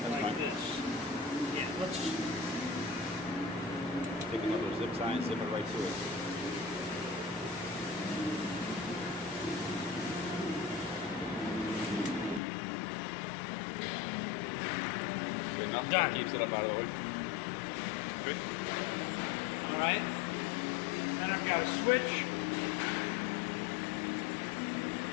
That's like fine. this. Yeah, let's, Take another zip tie and zip it right to it. Good enough. Done. Keeps it up out of the way. Good. all right. And I've got a switch.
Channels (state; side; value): drops out; right; at 12.4 s